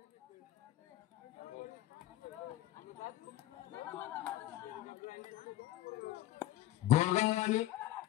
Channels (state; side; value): quieter; right; 14.4 dB